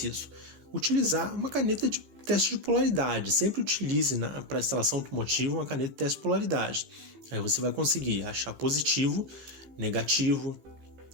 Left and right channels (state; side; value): late; left; 15 ms